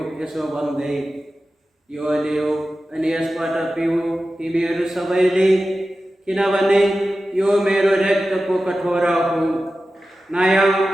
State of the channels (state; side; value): normal; both; correlation 0.94